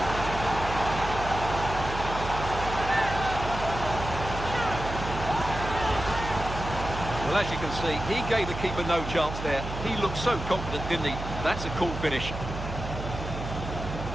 Well, as you can see, he gave the keeper no chance there. He looked so confident, didn't he? That's a cool finish.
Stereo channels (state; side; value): noise; right; hum, 7 dB below the sound